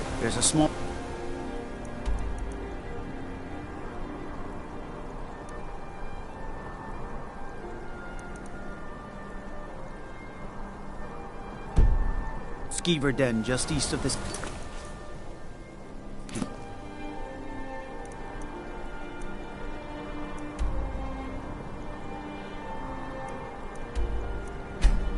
There's a small... skeever den just east of this...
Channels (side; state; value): both; identical; correlation 1.00